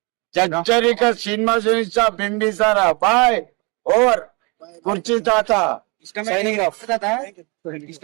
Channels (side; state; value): left; quieter; 29.9 dB